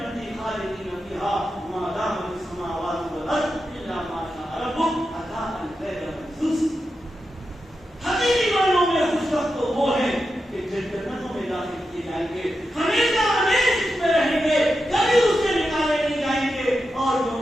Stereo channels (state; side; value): normal; both; correlation 0.89